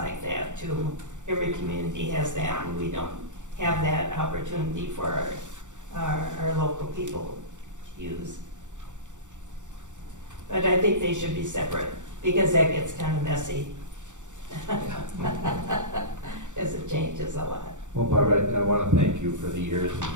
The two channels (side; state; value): left; late; 0.85 ms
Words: that too. Every community has that, and we don't have that opportunity for our local people to use. But I think they should be separate, because that gets kind of messy. As it changes a lot. Well, Barbara, I want to thank you for the years